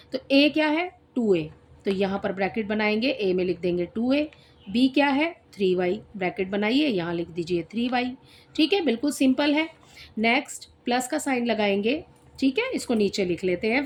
तो a क्या है? 2a, तो यहाँ पर ब्रैकेट बनाएंगे, a में लिख देंगे 2a। b क्या है? 3y, ब्रैकेट बनाइए यहाँ लिख दीजिए 3y। ठीक है, बिल्कुल सिंपल है। नेक्स्ट प्लस का साइन लगाएंगे। ठीक है, इसको नीचे लिख लेते हैं।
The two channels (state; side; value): identical; both; correlation 1.00